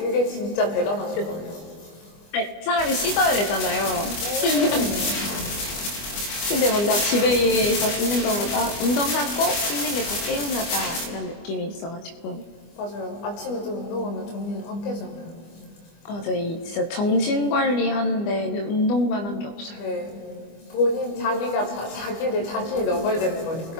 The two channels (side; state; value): right; late; 25 ms